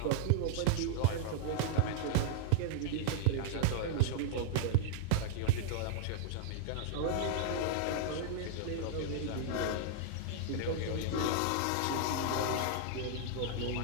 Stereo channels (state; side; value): different; both; correlation -0.01